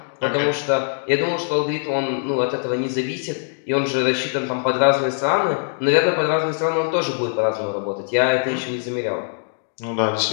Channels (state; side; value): silent; right; digital silence